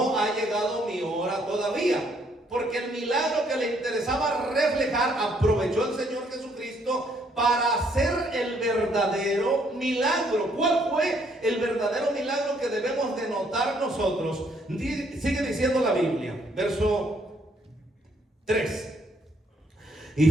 ha llegado mi hora todavía. Porque el milagro que le interesaba reflejar, aprovechó el Señor Jesucristo para hacer el verdadero milagro. ¿Cuál fue el verdadero milagro que debemos de notar nosotros? Sigue diciendo la Biblia, verso 3. Y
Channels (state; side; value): normal; both; correlation 0.68